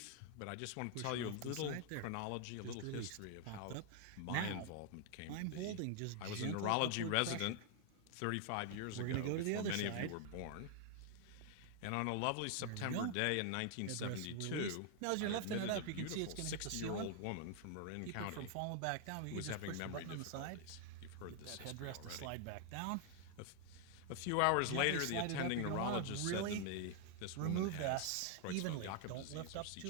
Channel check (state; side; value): different; both; correlation 0.00